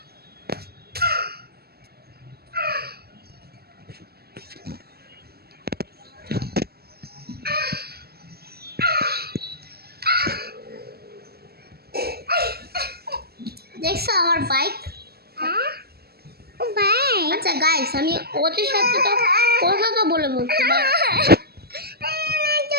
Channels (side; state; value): left; late; 0.46 ms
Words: দেখছো আমার বাইক? আচ্ছা গাইস, আমি ওদের সাথে তো কথা তো বলে বলছি,